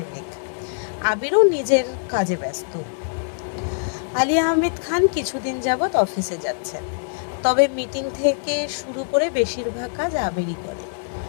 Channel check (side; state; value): right; silent; 63 dB below the other